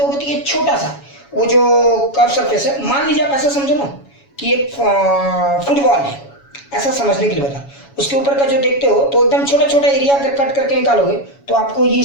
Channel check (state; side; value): late; right; 7.1 ms